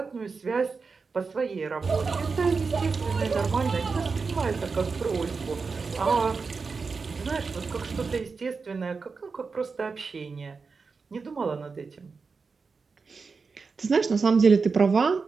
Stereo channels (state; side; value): quieter; left; 4.8 dB